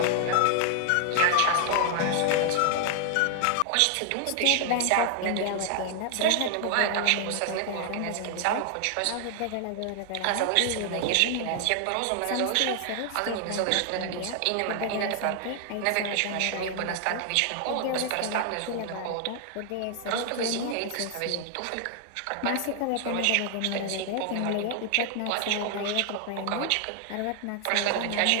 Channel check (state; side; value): different; both; correlation 0.00